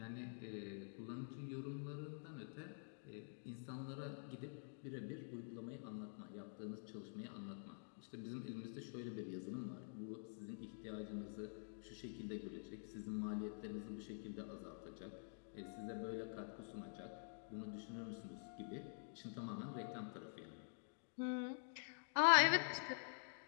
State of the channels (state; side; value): silent; right; digital silence